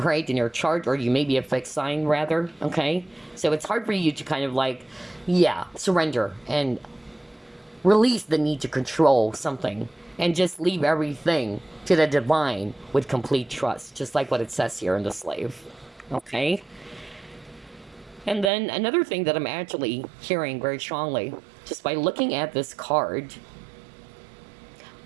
in your chart, or you may be a fixed sign, rather, okay? So it's hard for you to kind of surrender and release the need to control something and just leave everything to the divine with complete trust, just like what it says here in the slave, okay? And then another thing that I'm actually hearing very strongly, just by looking at this card,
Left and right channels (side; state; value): left; drops out; at 18.5 s